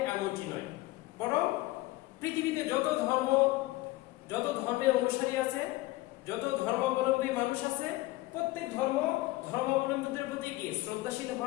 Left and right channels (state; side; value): quieter; right; 19.3 dB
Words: এমনটি নয়, বরং পৃথিবীতে যত ধর্মের অনুসারী আছে, যত ধর্মাবলম্বী মানুষ আছে, প্রত্যেক ধর্মাবলম্বীদের প্রতি কি শ্রদ্ধাশীল